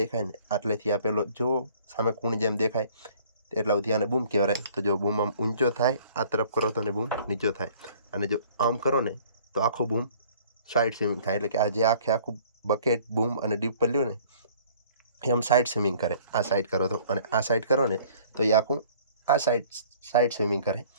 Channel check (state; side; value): inverted; both; correlation -0.54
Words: ને આટલેથી આ પેલો જો સામે કૂણ જેમ દેખાય એટલા સુધી આને બૂમ કહેવાય. તો જો બૂમ આમ ઊંચો થાય આ તરફ કરો તો ને બૂમ નીચો થાય, અને જો આમ કરો ને તો આખું બૂમ સાઈડ સ્વિમિંગ થાય. એટલે કે આ જે આખું બકેટ બૂમ અને ડીપર લ્યો ને એ આમ સાઈડ સ્વિમિંગ કરે. આ સાઈડ કરો તો અને આ સાઈડ કરો ને તો એ આખું આ સાઈડ સ્વિમિંગ કરે.